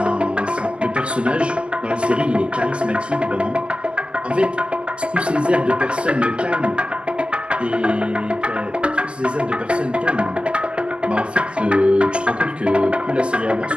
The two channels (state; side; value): late; left; 0.057 ms